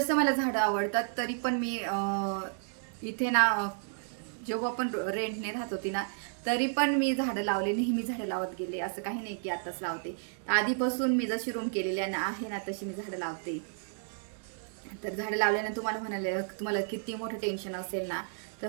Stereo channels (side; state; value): left; silent; digital silence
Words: मला झाडं आवडतात. तरी पण मी इथे ना जेव्हा पण रेंटने राहत होती ना तरी पण मी झाडं लावले, नेहमी झाडं लावत गेले. असं काही नाही की आताच लावते, आधीपासून मी जशी रूम केलेली आहे ना तशी मी झाडं लावते. तर झाडं लावल्यानं तुम्हाला म्हणाले तुम्हाला किती मोठं टेन्शन असेल ना तर